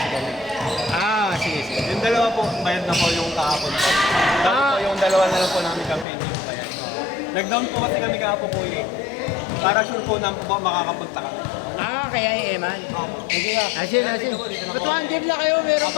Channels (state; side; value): drops out; right; at 6.1 s